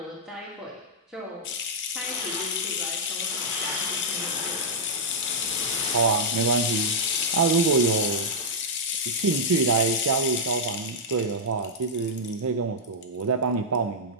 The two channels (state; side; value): normal; both; correlation -0.07